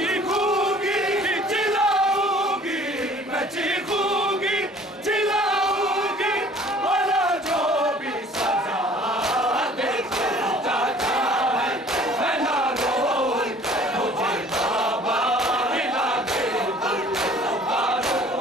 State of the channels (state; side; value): normal; both; correlation 0.51